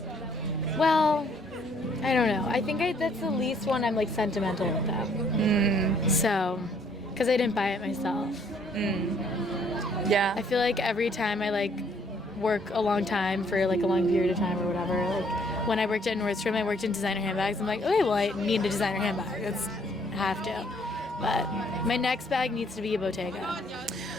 Well, I don't know. I think that's the least one I'm like sentimental with them. So, because I didn't buy it myself. Yeah. I feel like every time I like work a long time for like a long period of time or whatever, like when I worked at Nordstrom, I worked in designer handbags. I'm like, okay, well, I need a designer handbag. That's have to. But my next bag needs to be a Bottega.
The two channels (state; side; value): normal; both; correlation 0.65